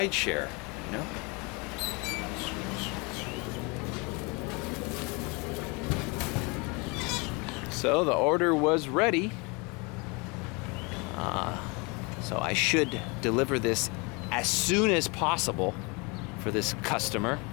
you know? So the order was ready. So I should deliver this as soon as possible for this customer.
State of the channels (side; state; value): right; quieter; 29.0 dB